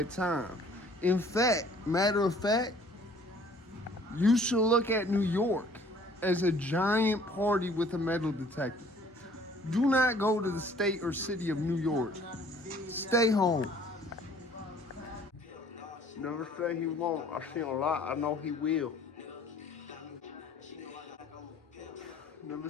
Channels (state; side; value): normal; both; correlation 0.55